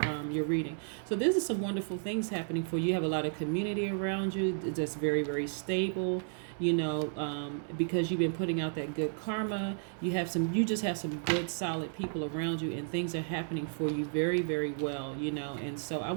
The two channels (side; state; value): left; silent; digital silence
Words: reading. So this is some wonderful things happening for you. You have a lot of community around you that's very, very stable. Because you've been putting out that good karma. You just have some good, solid people around you, and things are happening for you very, very well. And so I